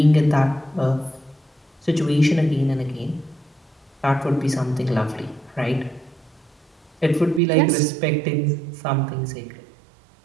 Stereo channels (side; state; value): left; drops out; at 7.4 s